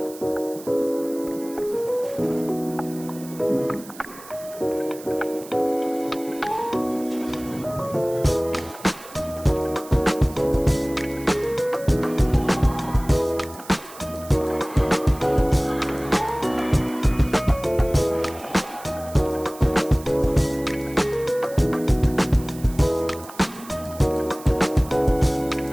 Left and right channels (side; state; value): right; noise; hiss, 18 dB below the sound